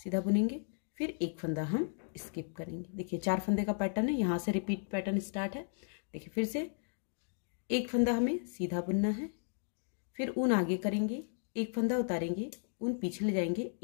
बुनेंगे, फिर एक फंदा हम स्किप करेंगे। देखिए 4 फंदे का पैटर्न है, यहाँ से रिपीट पैटर्न स्टार्ट है। देखिए फिर से एक फंदा हमें सीधा बुनना है, फिर ऊन आगे करेंगे, एक फंदा उतारेंगे, ऊन पीछे ले जाएंगे,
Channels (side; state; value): right; silent; digital silence